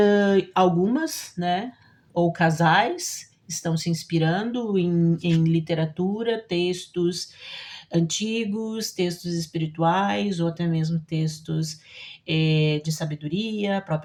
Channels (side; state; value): both; identical; correlation 1.00